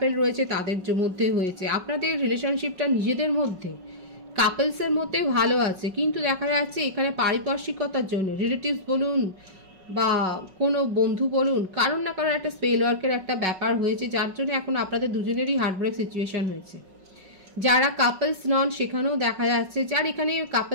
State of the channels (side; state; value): left; late; 5.4 ms